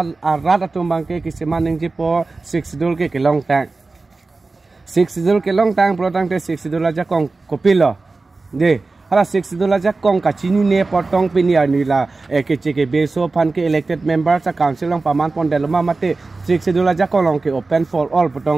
rat atum bang ke kisema ning ji po six sidul ke long tang six sidul ke long tang pro tang te six sidul aja kong kopilo de hala six dola jak kong kachini ne potong pinia nila ke beso pan ke elected members sa council long paman pondeloma mate six dola jak kong ke open for all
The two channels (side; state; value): left; quieter; 3.7 dB